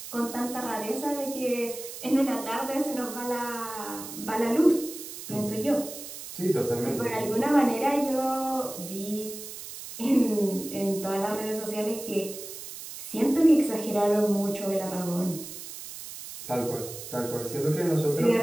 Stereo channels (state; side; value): noise; right; hiss, 11 dB below the sound